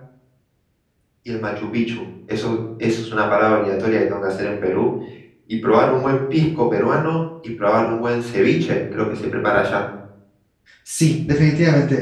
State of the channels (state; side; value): identical; both; correlation 1.00